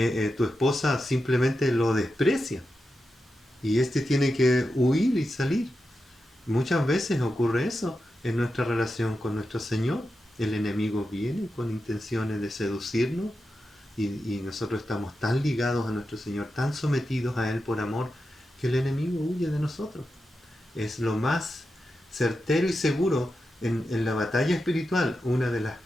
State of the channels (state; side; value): normal; both; correlation 0.89